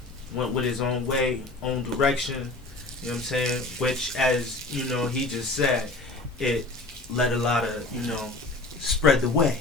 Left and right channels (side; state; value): right; quieter; 3.0 dB